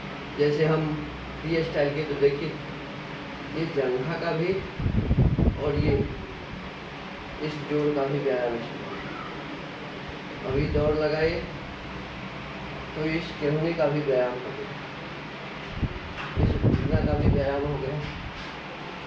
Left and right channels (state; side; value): identical; both; correlation 1.00